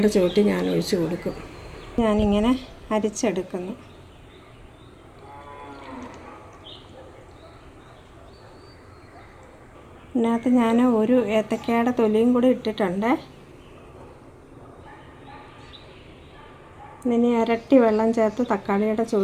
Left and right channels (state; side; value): identical; both; correlation 1.00